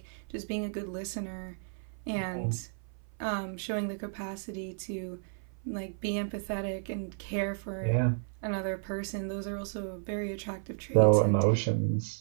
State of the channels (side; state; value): left; silent; 55 dB below the other